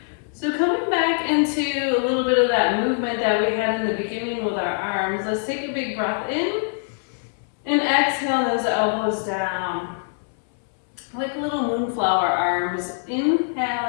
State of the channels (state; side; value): silent; right; 63 dB below the other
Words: So coming back into a little bit of that movement that we had in the beginning with our arms, let's take a big breath in and exhale those elbows down. Like little moonflower arms. Inhale